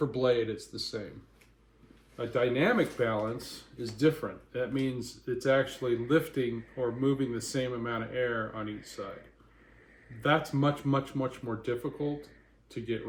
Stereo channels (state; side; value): identical; both; correlation 1.00